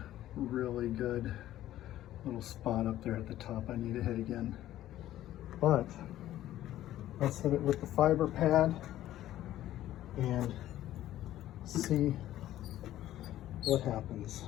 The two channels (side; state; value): right; quieter; 13.5 dB